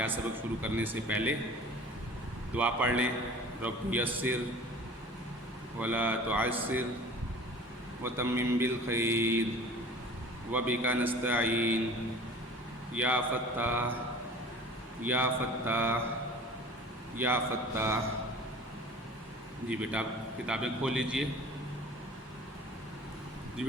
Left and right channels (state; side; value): normal; both; correlation 0.44